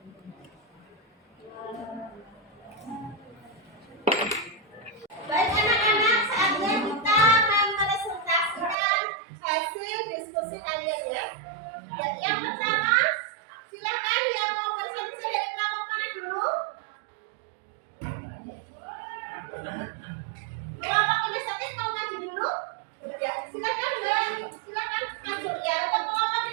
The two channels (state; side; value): drops out; left; at 8.8 s